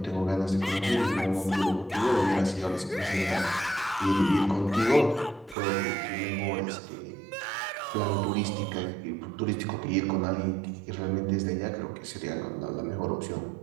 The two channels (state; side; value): drops out; left; at 5.6 s